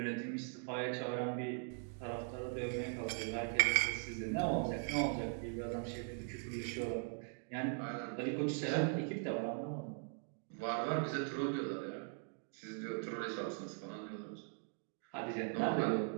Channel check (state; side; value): silent; left; 51 dB below the other